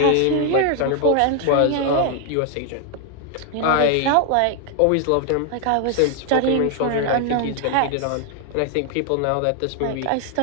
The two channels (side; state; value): both; different; correlation 0.00